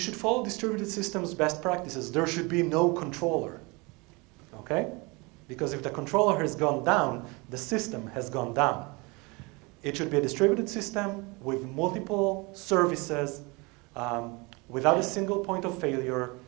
follow distributed systems best practices. There should be no controller, okay? Because if the controller has gone down, the system has gone down. It should be a distributed system with multiple services, without a single point of failure,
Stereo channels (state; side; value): quieter; left; 27.0 dB